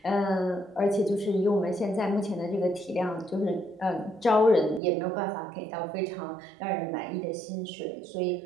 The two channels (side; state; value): left; drops out; at 4.8 s